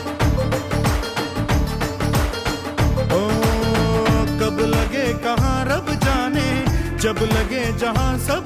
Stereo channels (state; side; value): identical; both; correlation 1.00